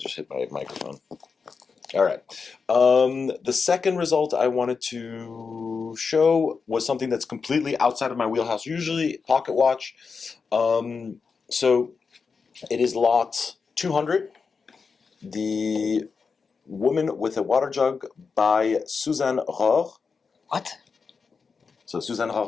hit my microphone. All right. The second result I wanted to show was something that's completely outside of my wheelhouse, usually pocket watch. So it is lot 200, the Woman with a Water Jug by Suzanne Rohr. What? So Suzanne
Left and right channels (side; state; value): right; quieter; 5.2 dB